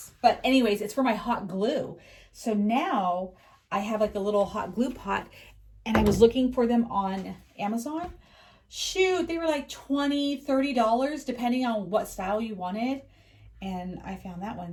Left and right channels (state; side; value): identical; both; correlation 1.00